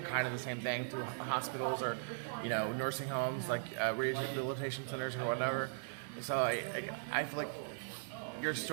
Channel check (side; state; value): left; silent; 52 dB below the other